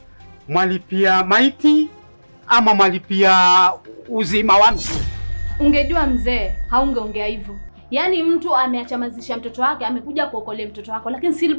mwalipia maiti ama mwalipia uzima wa mtu? Ungejua mzee, haungeongea hivyo. Yaani mtu ameachamazisha mtoto wake, amekuja kuokolea mtoto wako, lakini still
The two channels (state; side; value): inverted; both; correlation -1.00